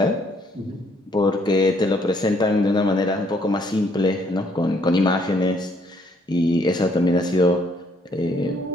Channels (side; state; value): both; normal; correlation 0.67